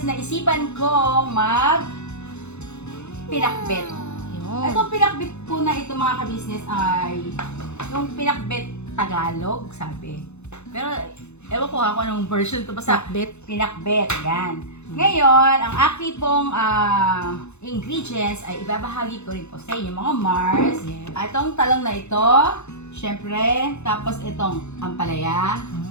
naisipan ko pinakbet. Yun. Itong pinakbet po na ito mga ka-business ay yung pinakbet Tagalog, sabi. Pero ewan ko kung anong version ito. Basta Pinakbet. pinakbet, yan. Ngayon, ang aking pong ingredients ay ibabahagi ko rin po sa inyo mga Mars. Yes. Itong talong na ito, syempre, tapos itong ampalaya,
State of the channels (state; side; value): late; right; 0.81 ms